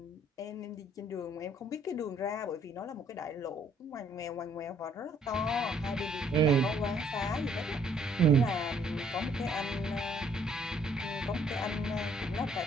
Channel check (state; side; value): normal; both; correlation 0.63